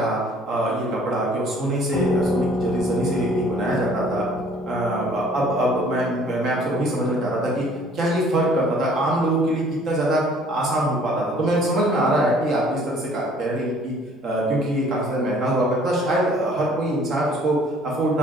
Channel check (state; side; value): normal; both; correlation 0.56